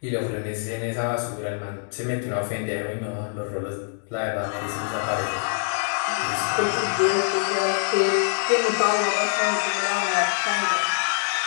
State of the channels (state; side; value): silent; right; digital silence